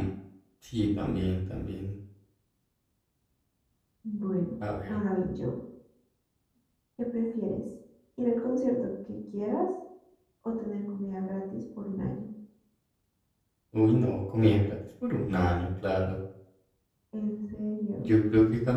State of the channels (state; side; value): identical; both; correlation 1.00